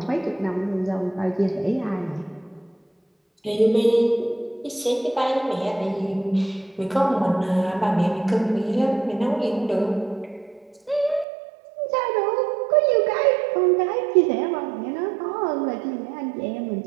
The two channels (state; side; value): drops out; left; at 11.2 s